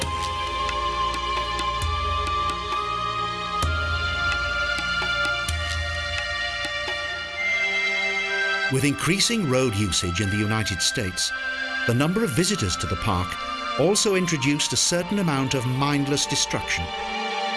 With increasing road usage in the United States, the number of visitors to the park also introduced a certain amount of mindless destruction.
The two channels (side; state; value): both; identical; correlation 1.00